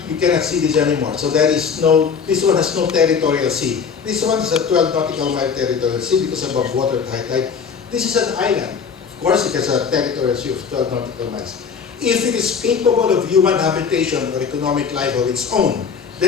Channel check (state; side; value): quieter; right; 6.2 dB